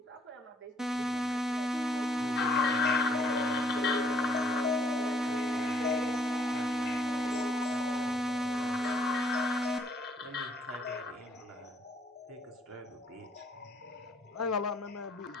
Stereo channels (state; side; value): normal; both; correlation 0.66